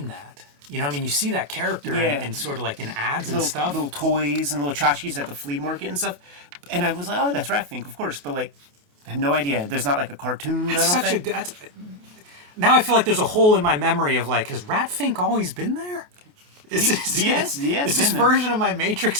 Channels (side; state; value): left; late; 28 ms